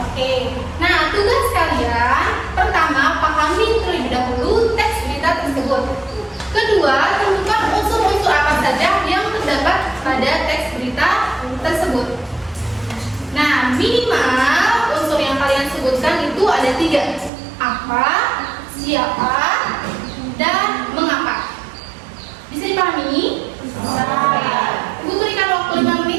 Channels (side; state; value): left; drops out; at 17.3 s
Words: Oke. Nah, tugas kalian pertama pahami terlebih dahulu teks berita tersebut. siapa, dan mengapa. Bisa dipahami? Bisa. Ibu berikan waktu 5